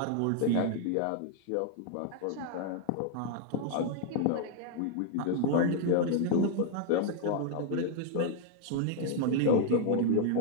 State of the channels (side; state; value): both; different; correlation 0.00